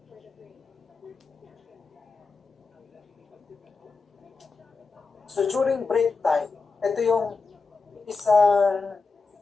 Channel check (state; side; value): quieter; right; 4.3 dB